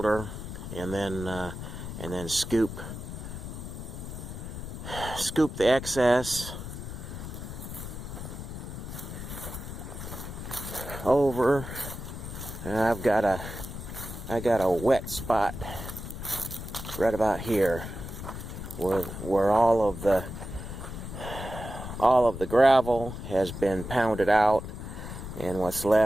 and then scoop the excess over. And I got a wet spot right about here where all of the gravel has been pounded out, and what's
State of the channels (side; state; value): left; noise; rumble, 8 dB below the sound